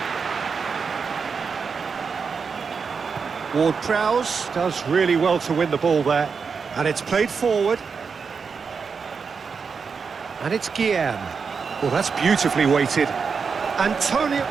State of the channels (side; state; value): left; quieter; 5.5 dB